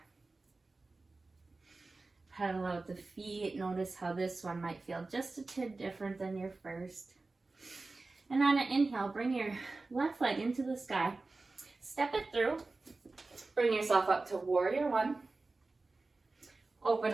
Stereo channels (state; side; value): quieter; left; 3.5 dB